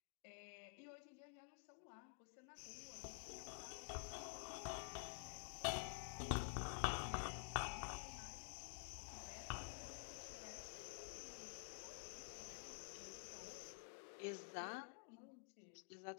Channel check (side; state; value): right; quieter; 39.4 dB